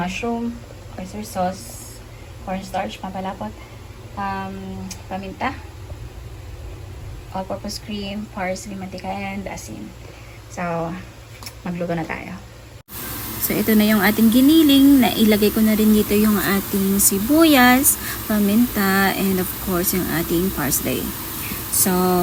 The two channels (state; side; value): identical; both; correlation 1.00